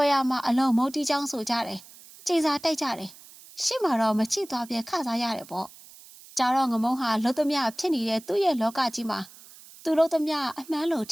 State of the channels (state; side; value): noise; right; hiss, 21 dB below the sound